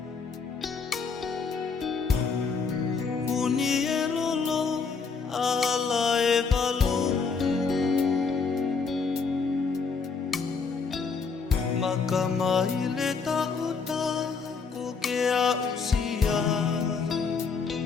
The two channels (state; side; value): quieter; right; 5.1 dB